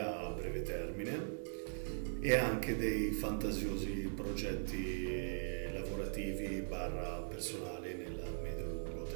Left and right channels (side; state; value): left; silent; 51 dB below the other